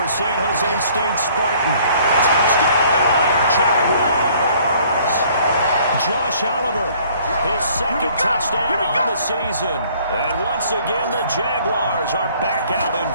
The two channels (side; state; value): both; inverted; correlation -0.58